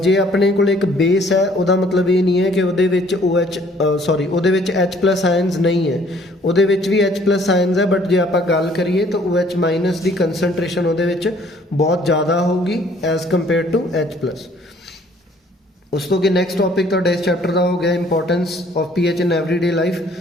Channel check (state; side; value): normal; both; correlation 0.59